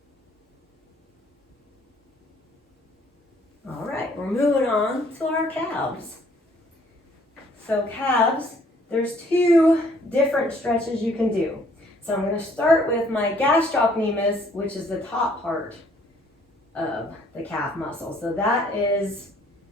All right, we're moving on to our calves. So calves, there's two different stretches you can do. So I'm going to start with my gastrocnemius, which is the top part of the calf muscle. So that is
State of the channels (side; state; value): both; normal; correlation 0.61